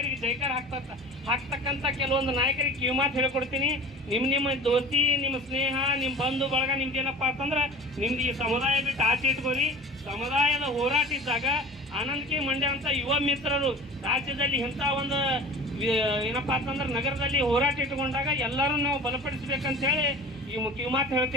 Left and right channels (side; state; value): both; normal; correlation 0.39